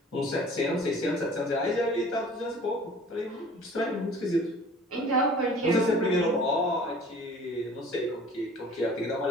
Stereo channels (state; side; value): normal; both; correlation 0.48